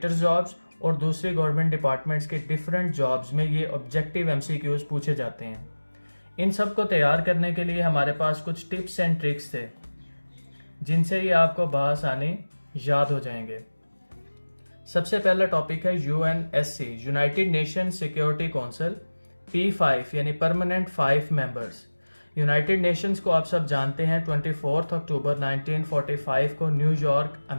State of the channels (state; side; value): inverted; both; correlation -1.00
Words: jobs और दूसरी गवर्नमेंट डिपार्टमेंट्स के डिफरेंट जॉब्स में ये ऑब्जेक्टिव MCQs पूछे जाते हैं। इन सब को तैयार करने के लिए हमारे पास कुछ टिप्स एंड ट्रिक्स थे जिनसे ये आपको बआसानी याद हो जाएंगे। सबसे पहला टॉपिक है UNSC, United nation security council, P5 यानी परमानेंट 5 मेंबर्स। यूनाइटेड नेशंस को आप सब जानते हैं 24 अक्टूबर 1945 को न्यूयॉर्क